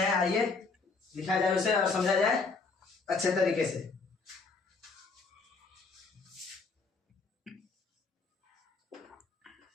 आइए लिखा जाए उसे और समझा जाए अच्छे तरीके से।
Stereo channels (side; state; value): right; quieter; 4.3 dB